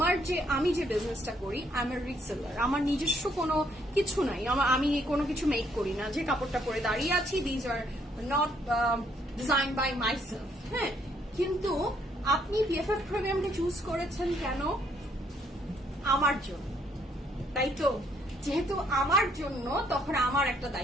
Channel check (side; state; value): both; normal; correlation 0.69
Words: আমি যে বিজনেসটা করি আমার রিসেলার, আমার নিজস্ব কোনো কিছু নাই, আমি কোনো কিছু মেক করি না। যে কাপড়টা পরে দাঁড়িয়ে আছি these are not design by myself. হ্যাঁ, কিন্তু আপনি পিএফএফ প্রিমিয়ামকে চুজ করেছেন কেন? আমার জন্য, তাই তো? যেহেতু আমার জন্য, তখন আমার একটা